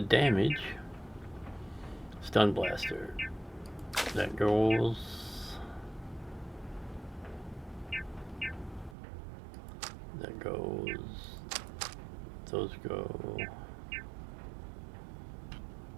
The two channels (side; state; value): left; drops out; at 9.0 s